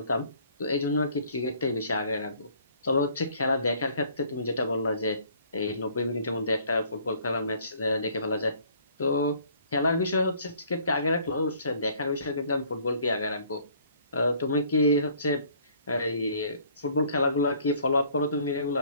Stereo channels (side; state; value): both; inverted; correlation -0.58